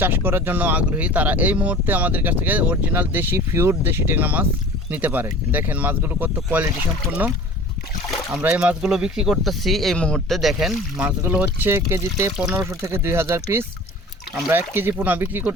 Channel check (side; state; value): both; normal; correlation 0.42